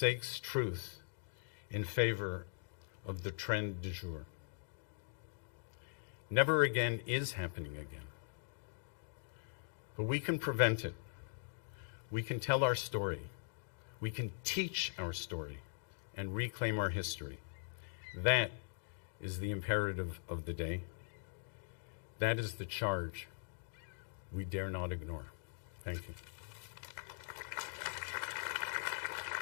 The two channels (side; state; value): right; silent; digital silence